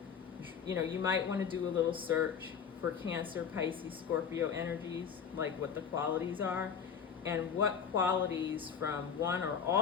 you might want to do a little search for Cancer, Pisces, Scorpio energies, like what the qualities are, and what qualities from one or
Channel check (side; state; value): right; quieter; 7.2 dB